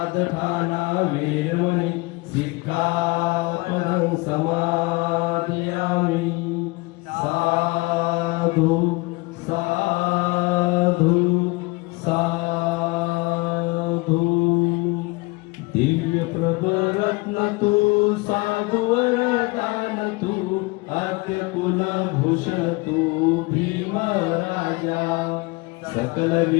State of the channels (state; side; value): quieter; right; 25.0 dB